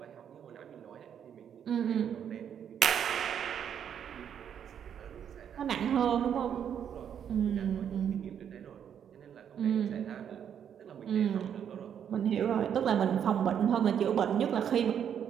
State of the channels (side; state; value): left; quieter; 8.7 dB